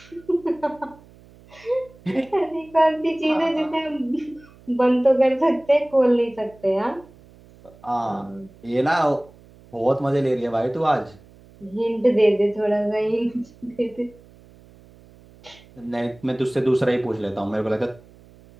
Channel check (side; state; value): right; noise; hum, 25 dB below the sound